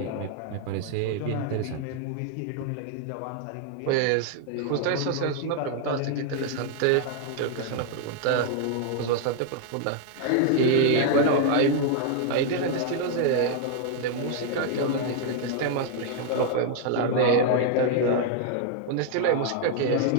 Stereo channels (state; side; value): different; both; correlation 0.00